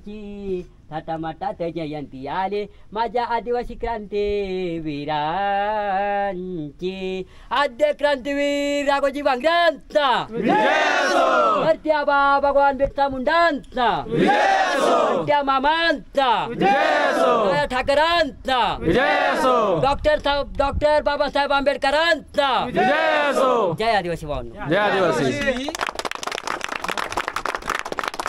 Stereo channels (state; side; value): identical; both; correlation 1.00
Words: थाटामाटात जयंती आली माझ्या आदिवासी क्रांती वीरांची आद्य क्रांतीवीर राघोजी भांगऱ्यांचा भरत्याबा भगवान बिरसा मुंडांचा भरत्या मामांचा ठाकरांचा डॉक्टर बाबासाहेब आंबेडकरांचा जय आदिवासी भावांनो जय आदिवासी.